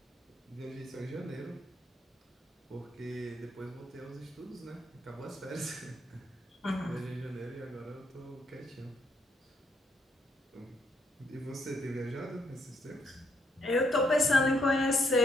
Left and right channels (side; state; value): both; normal; correlation 0.74